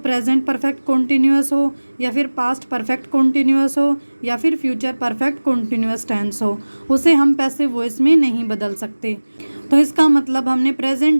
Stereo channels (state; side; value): inverted; both; correlation -1.00